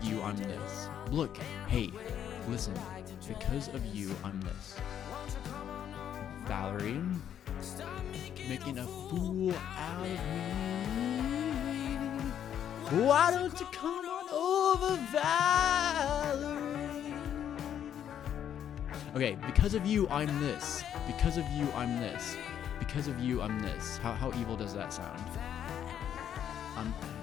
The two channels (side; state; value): right; quieter; 9.6 dB